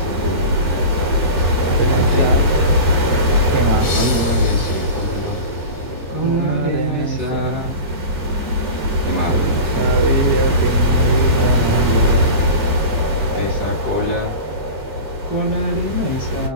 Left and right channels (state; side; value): late; right; 3.0 ms